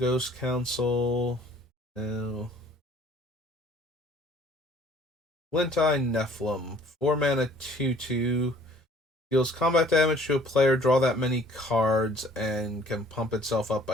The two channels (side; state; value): both; normal; correlation 0.56